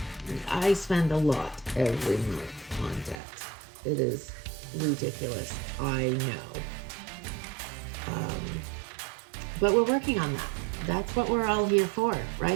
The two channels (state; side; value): drops out; left; at 3.2 s